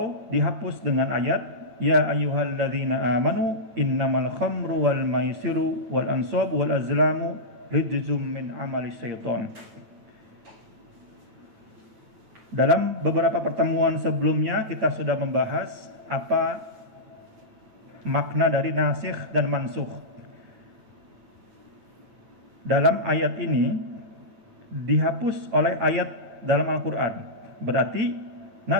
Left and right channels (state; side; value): late; left; 9.1 ms